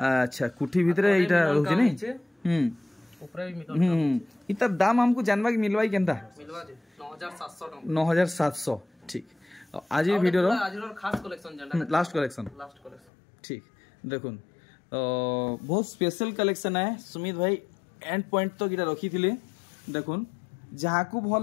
कुठी भीतर एटा रहउछि नै ऊपर भी मिलन इतर दाम हमको जानबा कि मिलवाई केनता मिलवा दे 9700 टका 9700 ठीक आज ये वीडियो आज खास कलेक्शन जंडा लास्ट कलेक्शन ठीक देखुन बहुत स्पेशल कलेक्शन है सुमित भाई एंड पॉइंट तो गिरा रखी थिले देखुन जहाँ को भल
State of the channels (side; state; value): right; drops out; at 13.1 s